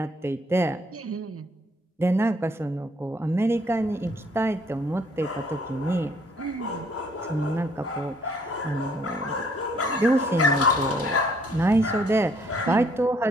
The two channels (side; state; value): both; normal; correlation 0.64